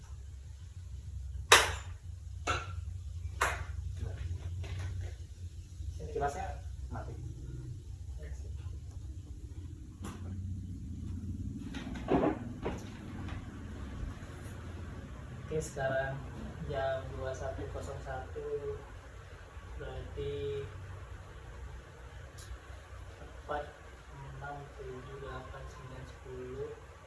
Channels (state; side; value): identical; both; correlation 1.00